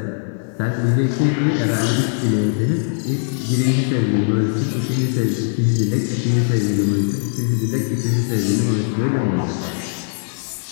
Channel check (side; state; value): right; silent; digital silence